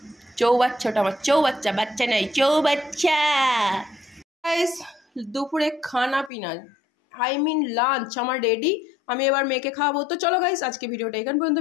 চৌবাচ্চাটা আমার, চৌবাচ্চা, বাচ্চা নাই, চৌবাচ্চা। গাইস, দুপুরে খানা পিনা, লাঞ্চ আমার রেডি, আমি এবার মেয়েকে খাওয়াবো। তো চলো গাইস, আজকে ভিডিওটা এখান পর্যন্ত।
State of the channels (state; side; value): drops out; right; at 6.3 s